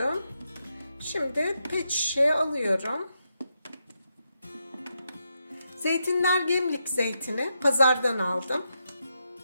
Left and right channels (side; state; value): both; inverted; correlation -0.84